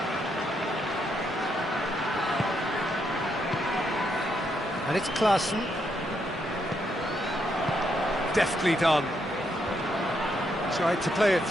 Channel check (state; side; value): normal; both; correlation 0.77